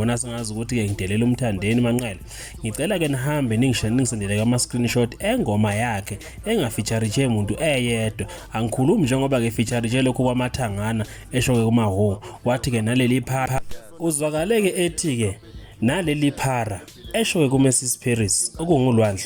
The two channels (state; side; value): identical; both; correlation 1.00